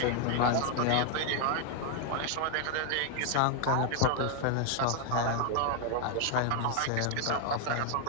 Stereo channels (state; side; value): different; both; correlation 0.00